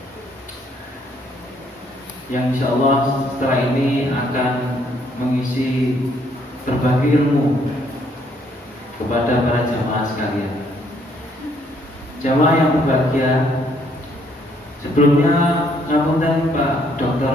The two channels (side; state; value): both; normal; correlation 0.68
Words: yang insya Allah setelah ini akan mengisi berbagi ilmu kepada para jamaah sekalian. Jamaah yang berbahagia, sebelumnya ngapunten Pak